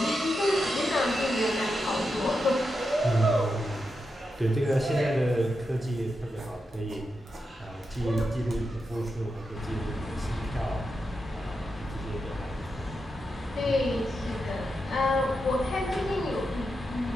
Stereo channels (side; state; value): both; normal; correlation 0.87